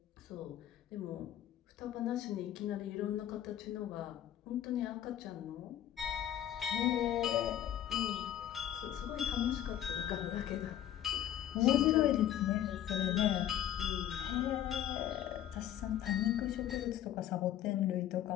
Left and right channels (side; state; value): right; quieter; 11.5 dB